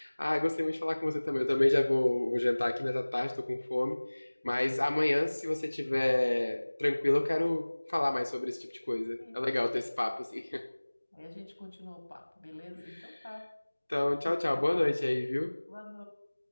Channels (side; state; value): both; inverted; correlation -1.00